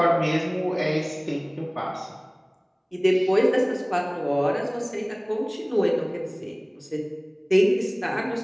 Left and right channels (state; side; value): identical; both; correlation 1.00